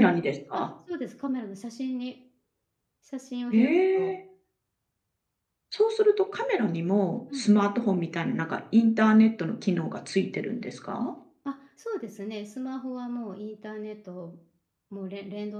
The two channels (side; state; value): both; identical; correlation 1.00